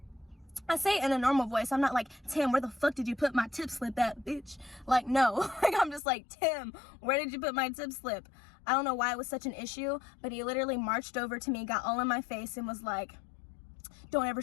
I say it in a normal voice. I'm not like, Tim, where the fuck did you put my tip slip at, bitch? Like, no. Like, I'm just like, Tim, where did you put my tip slip? I don't know why it was such an issue, but he literally marched over to me, got all in my face, and was like, don't ever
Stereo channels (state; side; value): drops out; right; at 6.0 s